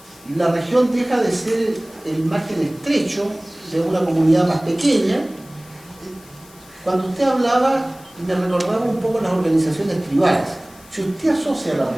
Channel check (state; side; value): noise; left; hiss, 24 dB below the sound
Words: Y la región deja de ser el margen estrecho de una comunidad más pequeña. Cuando usted hablaba, me recordaba un poco las organizaciones tribales. Si usted asocia la